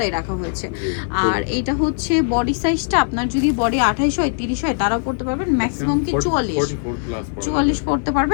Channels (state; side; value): silent; right; digital silence